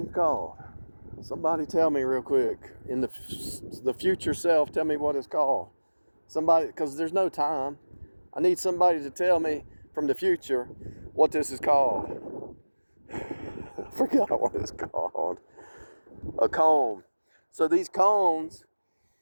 called? Somebody tell me real quick. In the future self, tell me what it's called. Somebody, because there's no time. I need somebody to tell me from the future what this is called. I forgot what it's called. A cone. So these cones,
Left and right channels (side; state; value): both; inverted; correlation -1.00